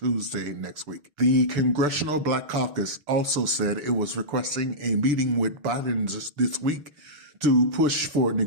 next week. The Congressional Black Caucus also said it was requesting a meeting with Biden this week to push for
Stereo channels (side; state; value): left; late; 6.9 ms